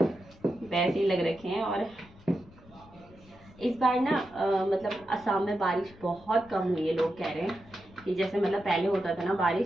वैसे ही लग रखे हैं। और इस बार ना मतलब असम में बारिश बहुत कम हुई है। लोग कह रहे हैं कि जैसे मतलब पहले होता था ना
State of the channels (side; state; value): left; noise; rumble, 23 dB below the sound